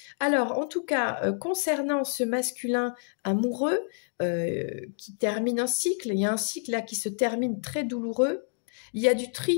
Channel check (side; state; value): right; silent; digital silence